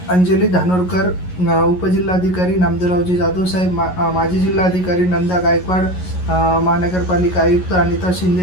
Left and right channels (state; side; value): late; right; 11 ms